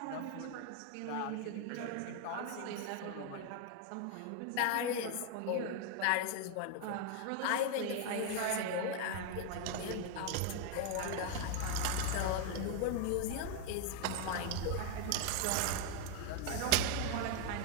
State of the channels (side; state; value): both; different; correlation 0.00